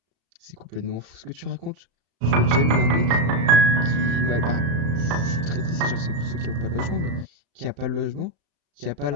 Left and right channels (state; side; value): late; left; 35 ms